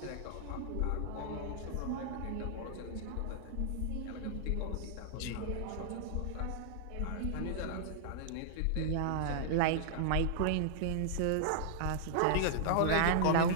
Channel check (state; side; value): different; both; correlation -0.01